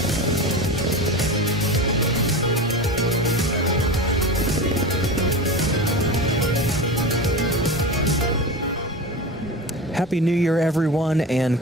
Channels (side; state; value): both; normal; correlation 0.28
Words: Happy New Year, everyone, and